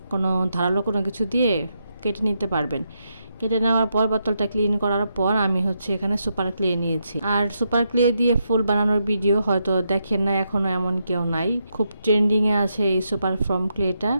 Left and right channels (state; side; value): inverted; both; correlation -0.82